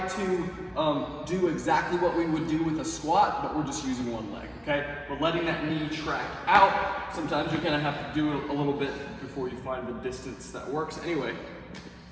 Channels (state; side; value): identical; both; correlation 1.00